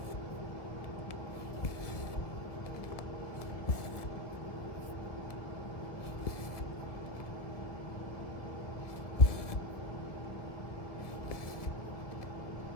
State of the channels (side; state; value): right; late; 1.4 ms